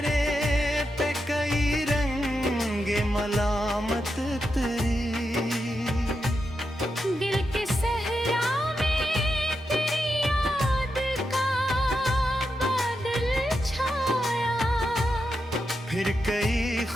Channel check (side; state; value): both; normal; correlation 0.86